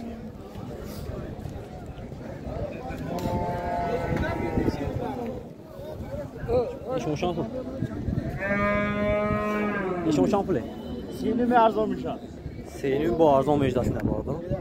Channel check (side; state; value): both; identical; correlation 1.00